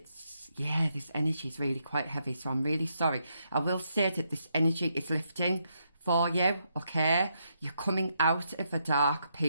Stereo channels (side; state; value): both; inverted; correlation -0.78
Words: energy is really quite heavy, so I'm really sorry. I will say that this energy is lifting for you, okay? You're coming out of a dark